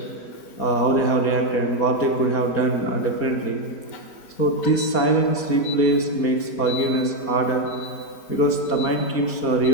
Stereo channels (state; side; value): late; right; 4.4 ms